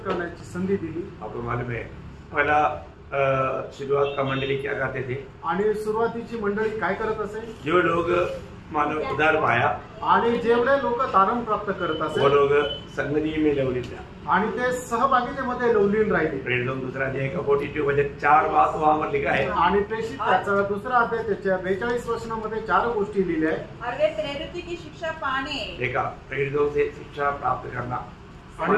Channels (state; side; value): identical; both; correlation 1.00